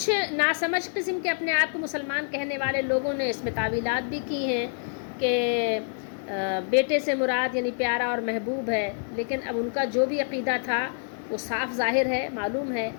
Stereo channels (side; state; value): right; silent; 60 dB below the other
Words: ناسمجھ قسم کے اپنے آپ کو مسلمان کہنے والے لوگوں نے اس میں تعویلات بھی کی ہیں کہ بیٹے سے مراد یعنی پیارا اور محبوب ہے، لیکن اب ان کا جو بھی عقیدہ تھا وہ صاف ظاہر ہے، معلوم ہے۔